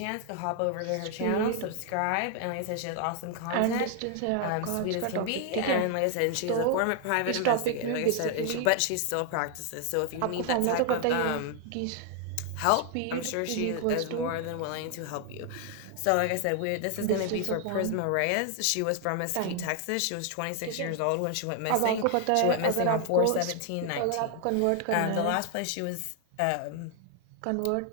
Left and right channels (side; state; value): both; different; correlation 0.00